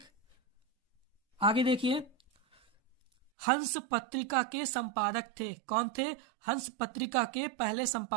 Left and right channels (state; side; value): drops out; left; at 3.3 s